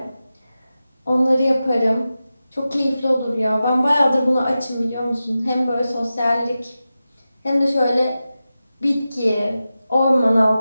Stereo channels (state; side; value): inverted; both; correlation -0.93